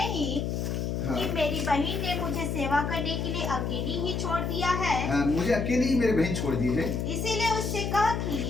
हाँ। कि मेरी बहन ने मुझे सेवा करने के लिए अकेली ही छोड़ दिया है? मुझे अकेली ही मेरे बहन छोड़ दी है, इसीलिए उससे कह कि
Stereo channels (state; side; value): noise; left; hum, 1 dB below the sound